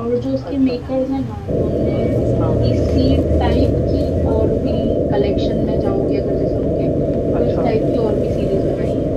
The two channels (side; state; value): both; identical; correlation 1.00